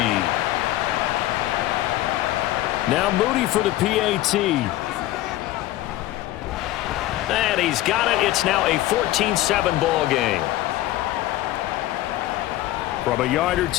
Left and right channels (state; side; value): quieter; right; 15.5 dB